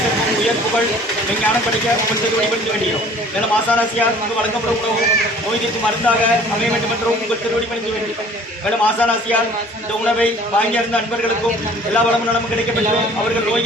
உயர் புகழ் விஞ்ஞானம் படிக்க உங்கள் திருவடிபடுத்த வேண்டியோம். மேலும் ஆசானாசியார் உங்களுக்கு வழங்கப்படும் உணவு நோய் தீர்க்கும் மருந்தாக அமைய வேண்டும் என்றும் உங்கள் திருவடிபடுத்த வேண்டியோம். மேலும் ஆசானாசியார் இந்த உணவை வாங்கியிருந்த அன்பர்களுக்கும் எல்லா வளமும் நலமும் கிடைக்கப்பட்டு அவர்கள்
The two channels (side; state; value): both; normal; correlation 0.51